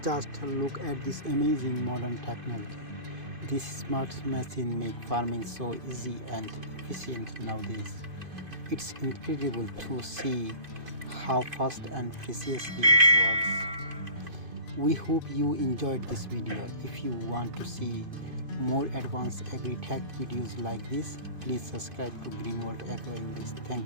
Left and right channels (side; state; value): left; late; 2.5 ms